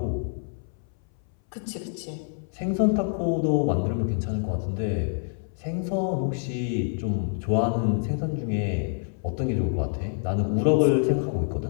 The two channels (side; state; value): right; silent; 60 dB below the other